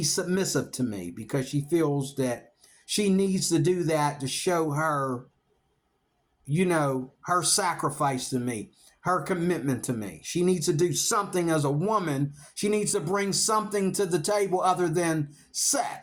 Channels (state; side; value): identical; both; correlation 1.00